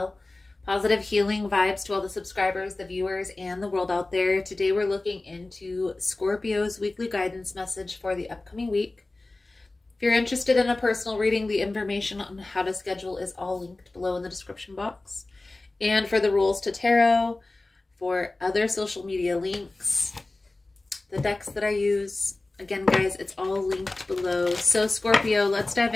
Positive healing vibes to all the subscribers, the viewers, and the world out there. Today we're looking into Scorpio's weekly guidance message for the upcoming week. If you're interested in a personal reading, the information on how to schedule is all linked below in the description box. And for the rules to tarot, for other social media links, the decks that I use, again, guys, it's all linked below. So Scorpio, let's dive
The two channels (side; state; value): right; quieter; 3.0 dB